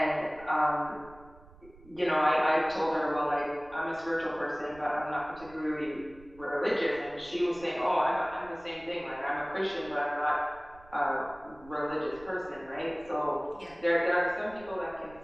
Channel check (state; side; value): noise; right; rumble, 22 dB below the sound